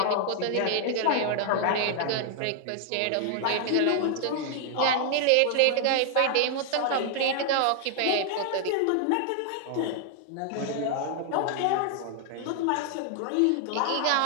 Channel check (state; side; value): different; both; correlation 0.00